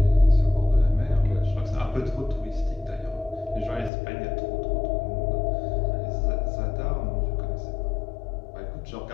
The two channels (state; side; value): drops out; right; at 3.9 s